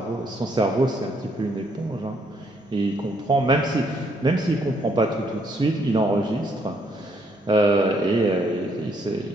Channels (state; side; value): normal; both; correlation 0.71